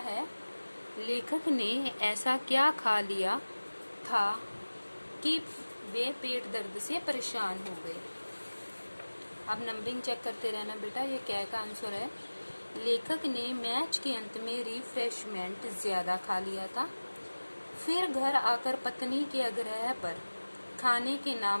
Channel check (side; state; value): both; inverted; correlation -1.00